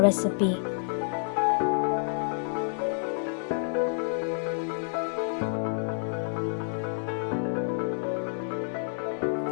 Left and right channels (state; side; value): silent; right; 56 dB below the other